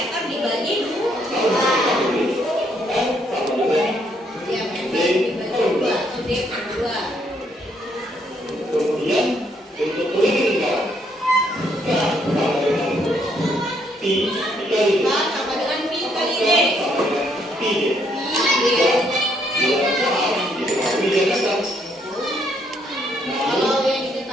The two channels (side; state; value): both; normal; correlation 0.71